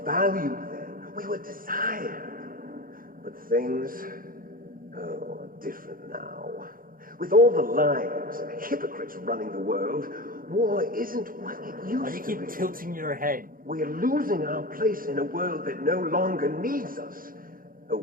valued then. We were desired. But things, are different now. With all the liars and hypocrites running the world, war isn't what it used to be. Why do you keep tilting your head? We're losing our place in a world that no longer needs us. A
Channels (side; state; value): left; late; 0.41 ms